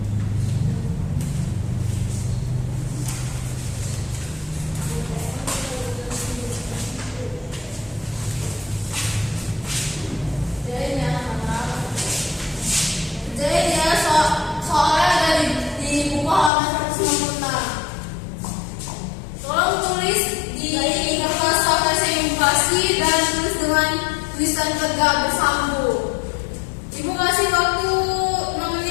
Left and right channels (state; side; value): drops out; right; at 16.5 s